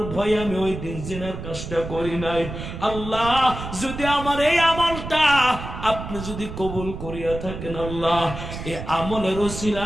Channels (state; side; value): noise; right; rumble, 8 dB below the sound